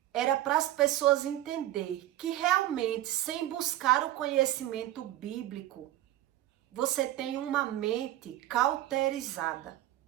era para as pessoas entenderem que realmente, sem buscar o conhecimento bíblico, você tem uma mente cauterizada.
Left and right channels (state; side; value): quieter; left; 14.2 dB